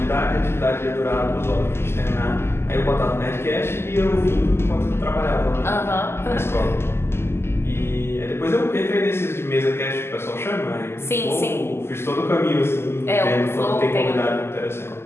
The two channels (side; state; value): right; late; 0.12 ms